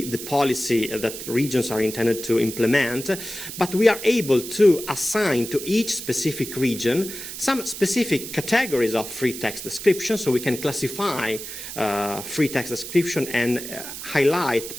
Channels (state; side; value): noise; right; hiss, 9 dB below the sound